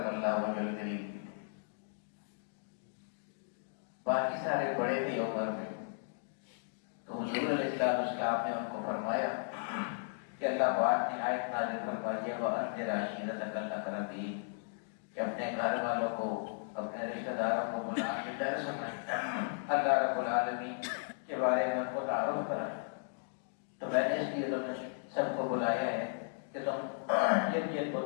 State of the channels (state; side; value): silent; right; digital silence